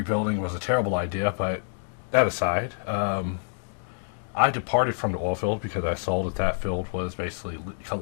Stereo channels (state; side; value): silent; right; digital silence